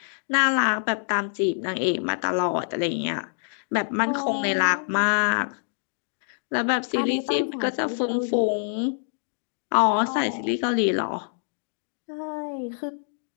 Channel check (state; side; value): silent; right; digital silence